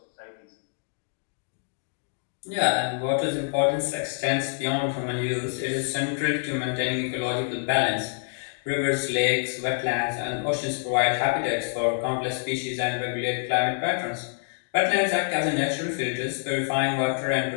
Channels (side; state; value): right; silent; digital silence